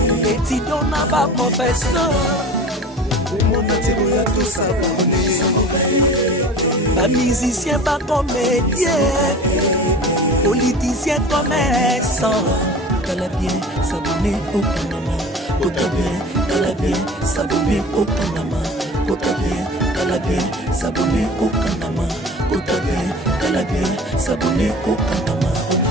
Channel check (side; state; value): both; normal; correlation 0.39